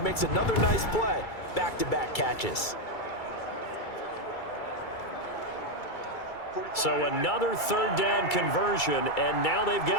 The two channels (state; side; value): late; right; 2.3 ms